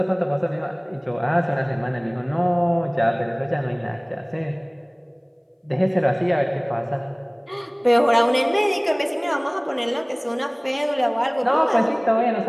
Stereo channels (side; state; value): both; identical; correlation 1.00